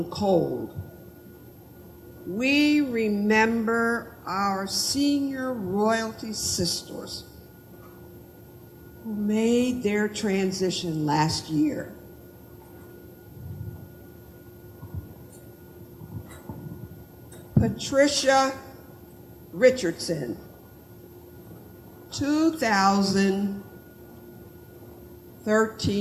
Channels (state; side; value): identical; both; correlation 1.00